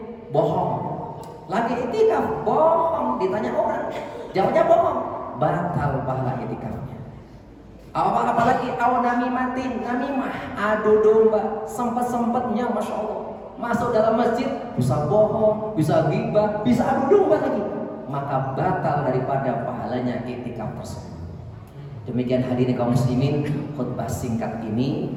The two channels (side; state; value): both; identical; correlation 1.00